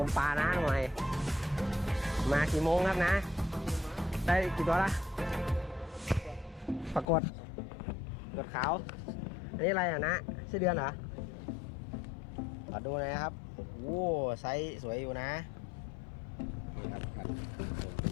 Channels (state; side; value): drops out; right; at 7.1 s